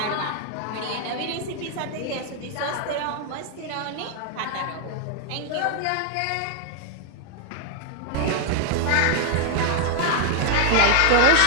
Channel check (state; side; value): different; both; correlation 0.00